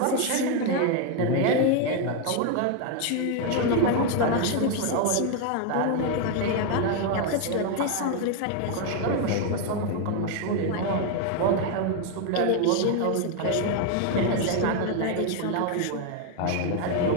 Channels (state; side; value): different; both; correlation 0.01